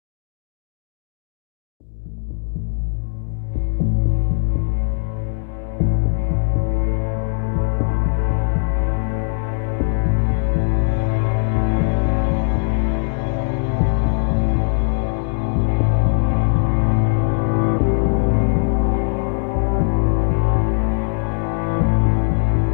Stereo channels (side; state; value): right; silent; 59 dB below the other